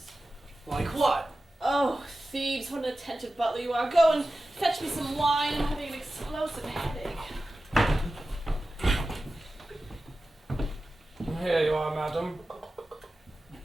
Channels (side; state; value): both; normal; correlation 0.94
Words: Like what? Oh, Thebes, what an attentive butler you are. Go and fetch me some wine. I'm having an explosive headache. Here you are, madam.